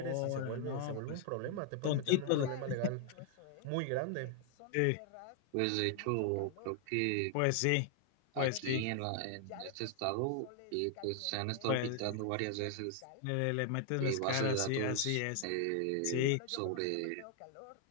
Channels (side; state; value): both; different; correlation 0.00